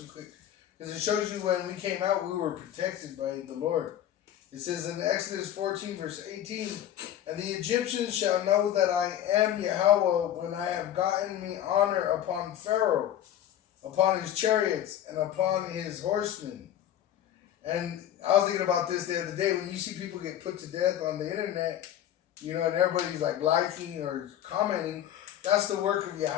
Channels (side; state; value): right; quieter; 11.1 dB